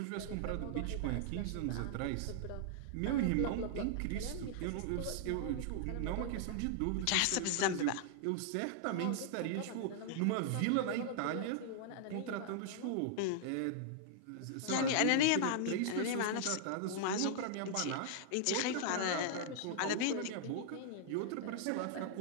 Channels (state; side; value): different; both; correlation -0.01